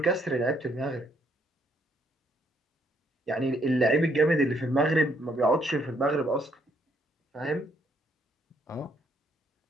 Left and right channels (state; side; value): normal; both; correlation 0.70